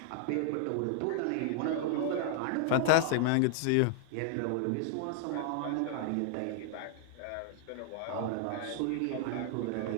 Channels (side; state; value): both; different; correlation -0.01